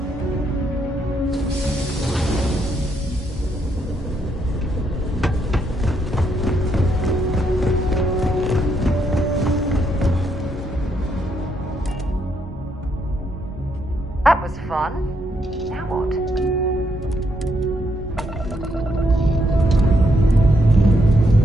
That was fun. Now what?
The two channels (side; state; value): both; normal; correlation 0.76